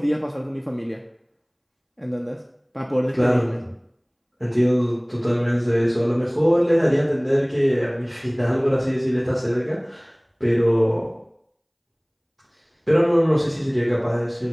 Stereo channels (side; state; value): both; identical; correlation 1.00